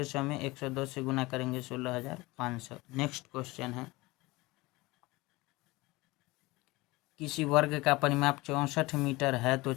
में 110 से गुना करेंगे 16,500। नेक्स्ट क्वेश्चन है, किसी वर्ग का परिमाप 64 मीटर है तो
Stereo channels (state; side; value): quieter; right; 21.5 dB